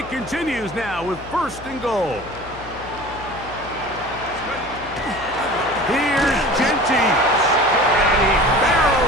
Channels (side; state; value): left; noise; hum, 17 dB below the sound